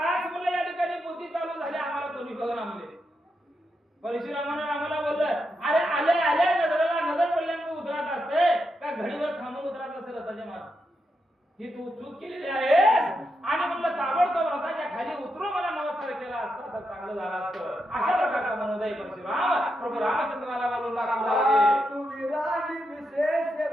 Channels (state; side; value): normal; both; correlation 0.84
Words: म्हणलं या ठिकाणी पोथी चालू झाली आम्हाला कोणी बघा म्हणले. परशुरामानं रामाला बोललं अरे आले आले नजरेला नजर पडल्यामुळे उतरत असते का घडीवर थांबून उतरत असते रथाच्या मागे. ही तू चूक केलेली आहेस आणि म्हणलं ताबडतोब रथाच्या खाली उतरून मला नमस्कार केला असता तर चांगलं झालं असतं. अशा प्रकारचा मनोदय परशुराम प्रभू रामचंद्राला बोलू लागले. तुझी राणी